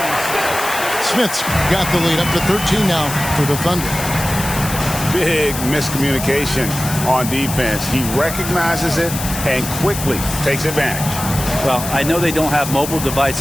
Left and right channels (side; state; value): left; noise; hiss, 7 dB below the sound